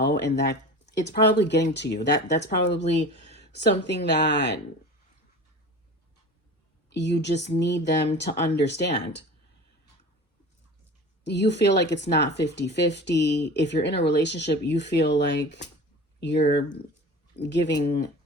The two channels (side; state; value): both; normal; correlation 0.36